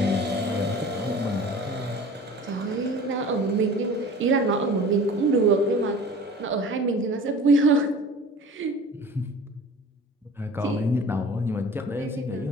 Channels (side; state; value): both; normal; correlation 0.42